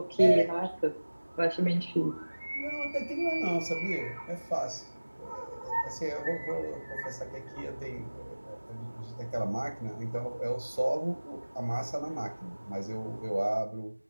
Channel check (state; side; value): inverted; both; correlation -1.00